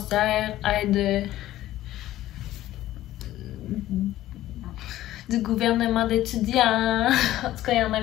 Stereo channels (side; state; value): right; quieter; 14.5 dB